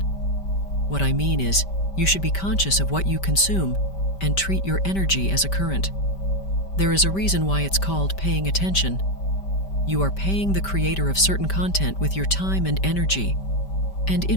What I mean is, you should be conscious of what you consume and treat your energy as a current. There is a reason why it's called paying attention. You are paying the creator of certain content with your time and energy, and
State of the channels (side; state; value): right; late; 5.1 ms